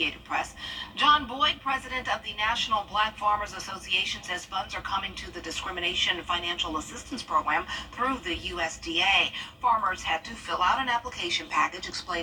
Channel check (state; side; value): identical; both; correlation 1.00